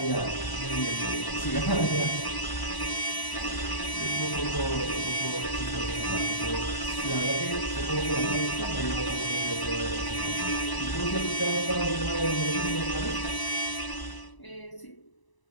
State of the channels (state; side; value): late; right; 1.0 ms